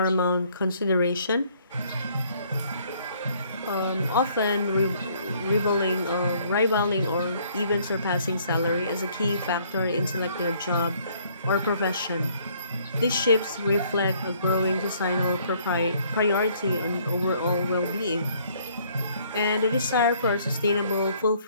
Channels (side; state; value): both; inverted; correlation -0.63